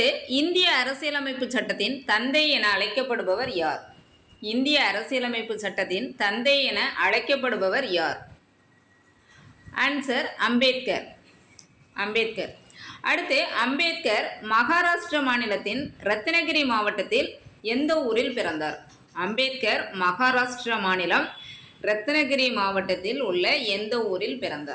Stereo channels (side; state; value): both; identical; correlation 1.00